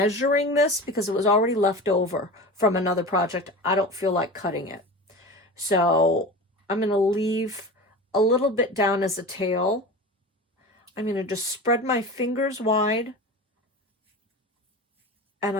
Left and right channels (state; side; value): normal; both; correlation 0.31